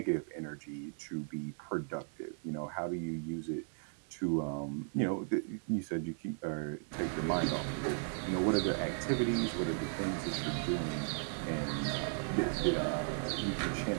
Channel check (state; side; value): silent; left; digital silence